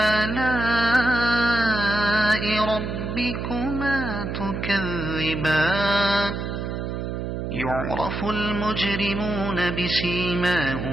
ربكما تكذبان يعرف المجرمون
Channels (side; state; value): right; noise; hum, 4 dB below the sound